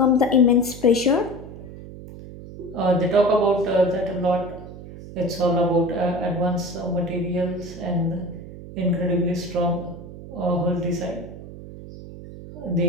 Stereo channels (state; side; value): noise; right; hum, 14 dB below the sound